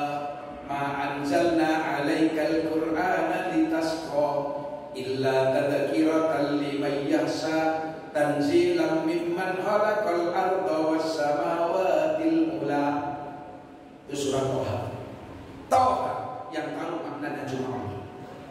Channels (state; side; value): identical; both; correlation 1.00